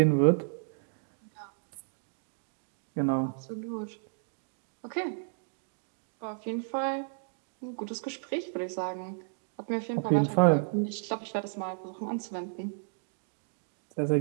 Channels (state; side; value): silent; left; digital silence